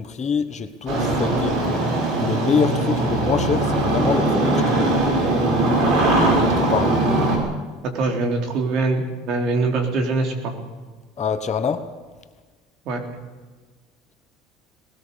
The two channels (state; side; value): normal; both; correlation 0.42